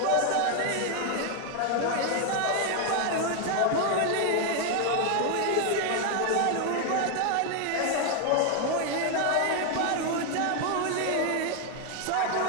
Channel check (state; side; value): different; both; correlation 0.01